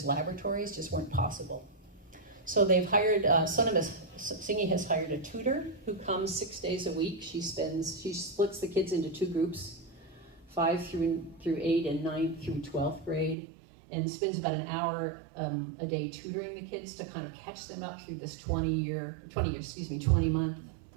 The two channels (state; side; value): drops out; left; at 13.4 s